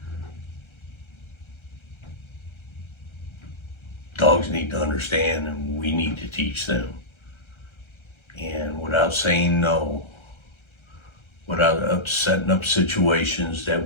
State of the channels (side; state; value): right; late; 1.3 ms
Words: dogs need to understand, and we need to teach them. And without saying no, without setting up situations